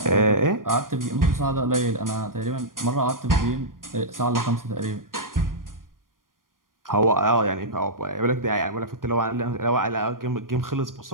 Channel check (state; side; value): late; left; 0.91 ms